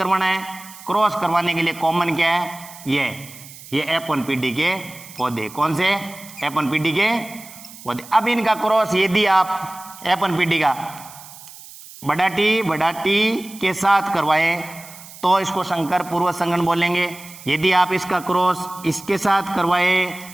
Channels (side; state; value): right; noise; hiss, 17 dB below the sound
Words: है, क्रॉस करवाने के लिए कॉमन क्या है, ये F1 पीढ़ी के पौधे। कौन से, F1 पीढ़ी के पौधे। अब इनका क्रॉस यदि आप F1 पीढ़ी का बड़ा टी के साथ करवाए तो इसको संकर पूर्वज संकरण बोलेंगे। यदि आप इसका क्रॉस इसके साथ करवाए